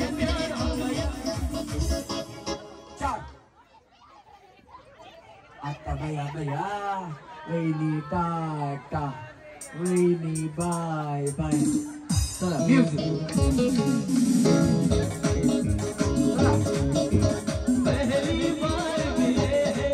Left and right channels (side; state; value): both; identical; correlation 1.00